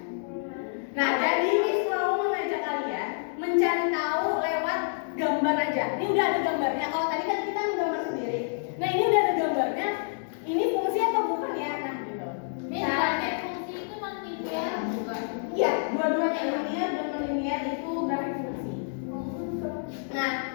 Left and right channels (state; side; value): silent; right; digital silence